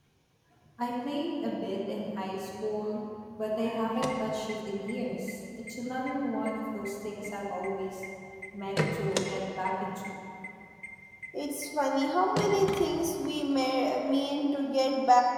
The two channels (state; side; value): identical; both; correlation 1.00